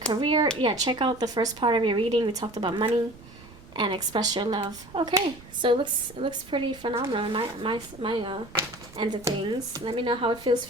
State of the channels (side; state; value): right; noise; rumble, 20 dB below the sound